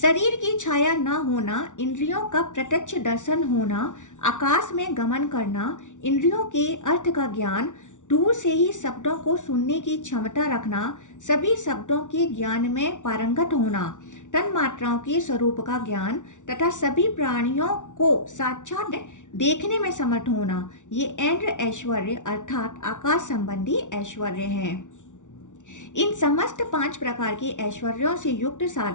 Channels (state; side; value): late; right; 0.86 ms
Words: की छाया न होना, इंद्रियों का प्रत्यक्ष दर्शन होना, आकाश में गमन करना, इंद्रियों के अर्थ का ज्ञान, दूर से ही शब्दों को सुनने की क्षमता रखना, सभी शब्दों के ज्ञान में पारंगत होना, तन मात्राओं के स्वरूप का ज्ञान तथा सभी प्राणियों को साक्षात देखने में समर्थ होना, ये इंद्र ऐश्वर्य अर्थात आकाश संबंधी ऐश्वर्य हैं। इन समस्त 5 प्रकार के ऐश्वर्यों से युक्त